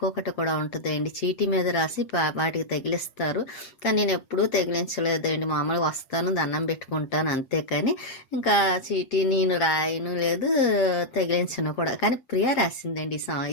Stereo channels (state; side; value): late; right; 8.5 ms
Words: కూడా ఉంటుందండి, చీటీ మీద రాసి వాటికి తగిలిస్తారు. కానీ నేను ఎప్పుడూ తగిలించలేదండి, మామూలుగా వస్తాను దండం పెట్టుకుంటాను అంతే, కానీ ఇంకా చీటీ నేను రాయను లేదు, తగిలించను కూడా. కానీ ప్రియా రాసిందండి